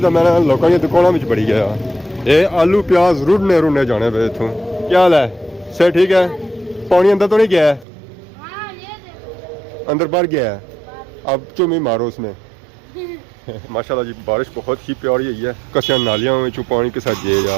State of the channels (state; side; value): drops out; left; at 7.9 s